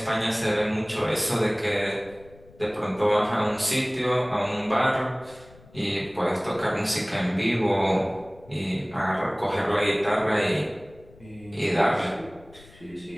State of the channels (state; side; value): noise; left; rumble, 24 dB below the sound